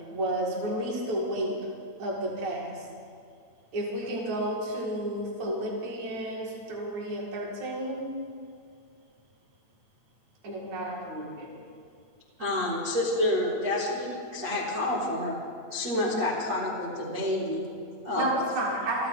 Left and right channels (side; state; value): left; late; 8.7 ms